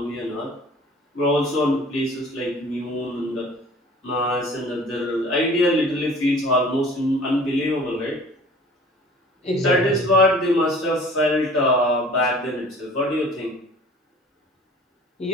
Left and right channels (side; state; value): both; normal; correlation 0.48